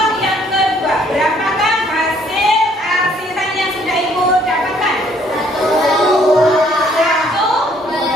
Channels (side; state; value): both; normal; correlation 0.63